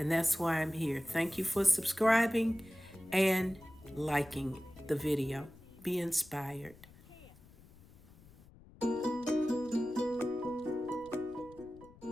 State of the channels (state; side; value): noise; left; rumble, 23 dB below the sound